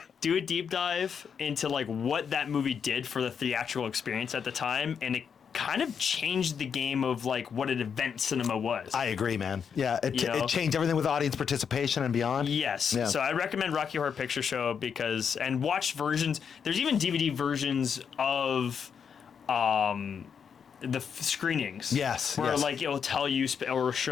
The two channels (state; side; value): quieter; right; 7.0 dB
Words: do a deep dive into what that movie did for the theatrical experience at the time, and it kind of changed the game of what an event cinema was. I agree, man. Yeah, it changed everything with audience participation and beyond. Yes. Yeah. So I recommend Rocky Horror Picture Show and watch versions. There's even DVD versions of the screenings. Yes. Where yes. it'll tell you or